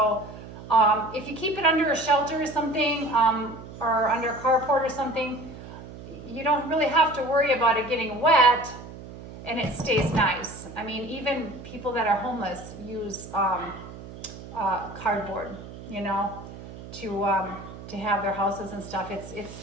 if you keep it under a shelter or something, or under a carport or something, you don't really have to worry about it getting wet and it stays nice. I mean, even people that are homeless use cardboard, you know, to have their houses and stuff. It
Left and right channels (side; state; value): right; noise; hum, 14 dB below the sound